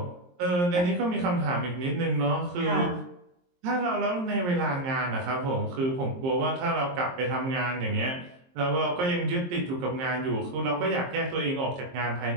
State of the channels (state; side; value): late; left; 23 ms